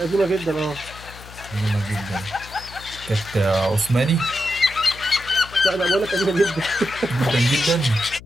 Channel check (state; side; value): noise; left; hum, 17 dB below the sound